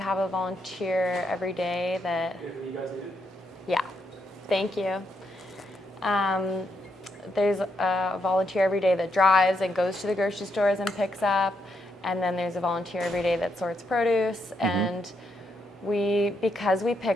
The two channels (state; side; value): normal; both; correlation 0.78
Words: a volunteer every day that. Yeah, thank you. There's a volunteer every day that drives and goes to the grocery stores and picks up. And then there's a volunteer every day that sorts produce. And because we